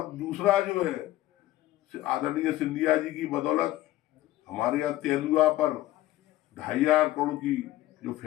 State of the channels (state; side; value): quieter; right; 15.6 dB